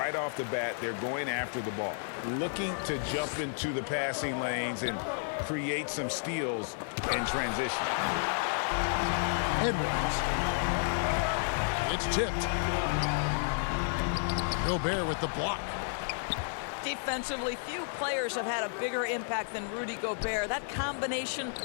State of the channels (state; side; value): silent; right; 57 dB below the other